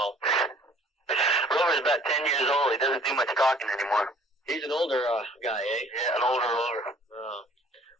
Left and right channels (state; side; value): normal; both; correlation 0.55